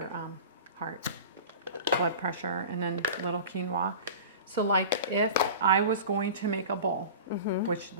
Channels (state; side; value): inverted; both; correlation -0.36